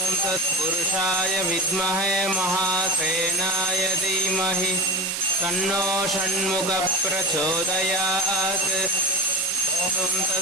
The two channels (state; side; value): noise; right; hiss, 4 dB below the sound